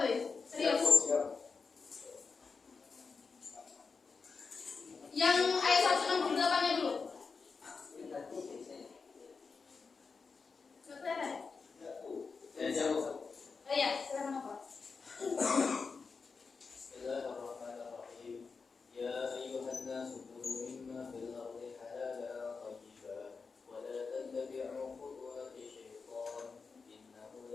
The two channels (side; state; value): right; quieter; 4.9 dB